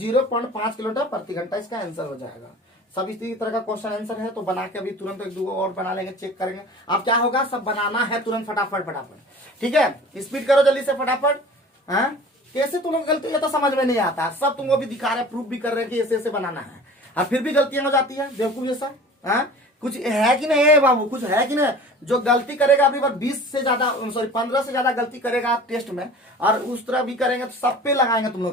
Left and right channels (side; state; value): both; normal; correlation 0.42